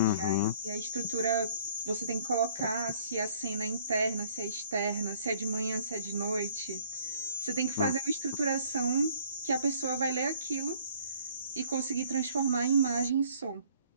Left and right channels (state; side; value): inverted; both; correlation -0.58